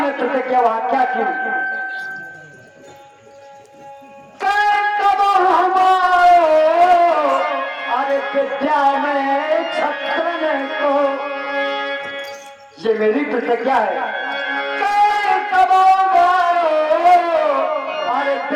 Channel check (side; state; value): both; identical; correlation 1.00